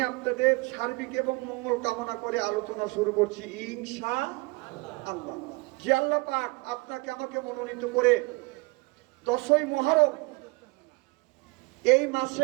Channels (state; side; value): quieter; left; 25.8 dB